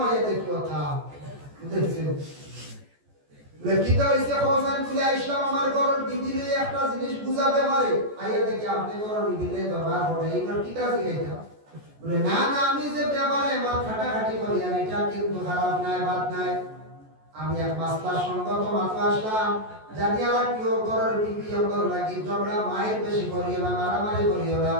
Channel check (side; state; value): left; late; 14 ms